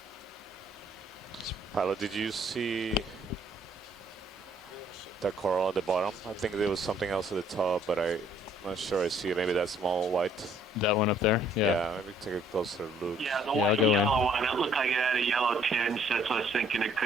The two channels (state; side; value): normal; both; correlation 0.63